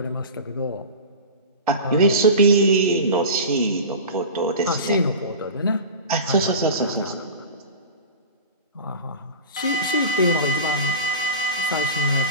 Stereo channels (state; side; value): inverted; both; correlation -0.31